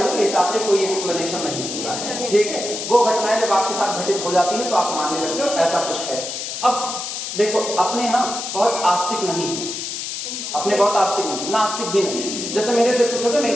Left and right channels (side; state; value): left; noise; hiss, 5 dB below the sound